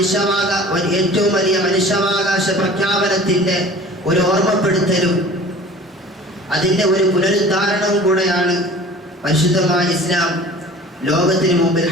വലിയ മനുഷ്യാവകാശ പ്രഖ്യാപനത്തിന്റെ ഒരു ഓർമ്മപ്പെടുത്തലും അതിന്റെ ഒരു പുനരുദ്ധാരണവും കൂടെയാണ് പരിശുദ്ധമായ ഇസ്ലാം ലോകത്തിന് മുമ്പിൽ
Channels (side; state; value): both; normal; correlation 0.44